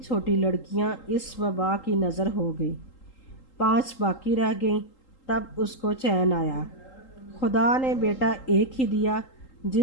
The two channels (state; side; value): late; right; 3.8 ms